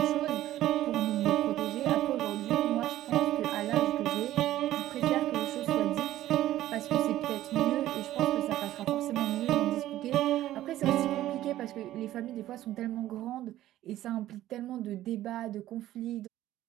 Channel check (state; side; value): quieter; left; 14.0 dB